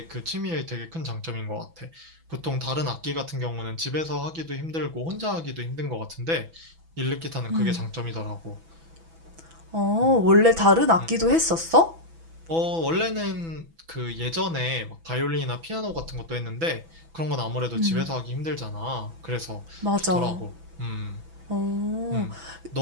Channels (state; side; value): late; left; 6.0 ms